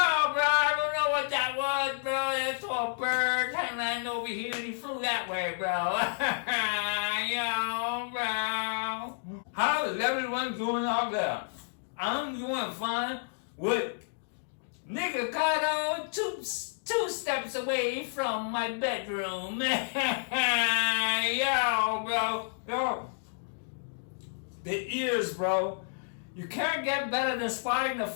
don't know what that was, bro. That's all bird hanging over here and he flew that way, bro. Yo, bro. How is everyone doing out there? I'm doing fine with Nikocado two steps away from my bedroom. Yo, bro. Yo. The ears, bro. You can't get better than spotting the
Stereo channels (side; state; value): right; silent; digital silence